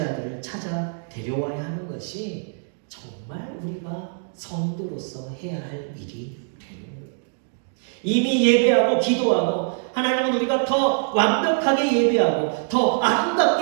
아들을 찾아 데려와야 하는 것이 정말 우리가 성도로서 해야 할 일이 되는 거예요. 이미 예배하고 기도하고 하나님은 우리가 더 완벽하게 예배하고 더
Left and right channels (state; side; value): silent; left; digital silence